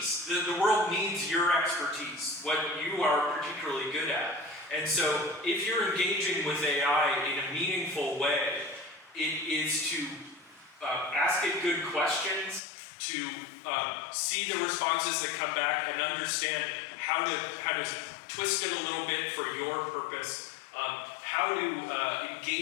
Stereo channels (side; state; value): right; drops out; at 12.6 s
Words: The world needs your expertise, what you are particularly good at. And so if you're engaging with AI in a meaningful way, it is to ask it good questions, to see the responses that come back and understand how to twist it a little bit for your purpose, how to